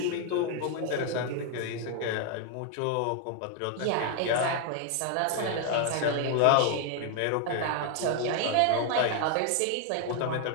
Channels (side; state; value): both; different; correlation 0.00